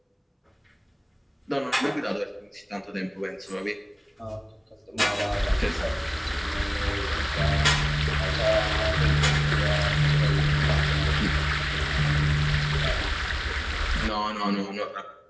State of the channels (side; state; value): both; identical; correlation 1.00